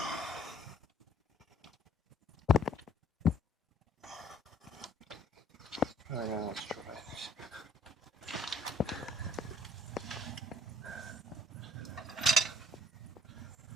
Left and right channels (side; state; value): both; normal; correlation 0.59